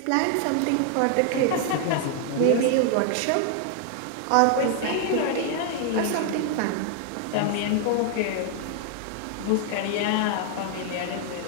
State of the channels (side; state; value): both; different; correlation 0.00